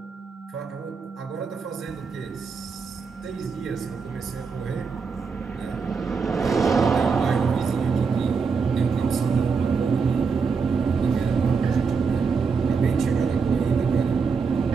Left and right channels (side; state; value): left; quieter; 5.3 dB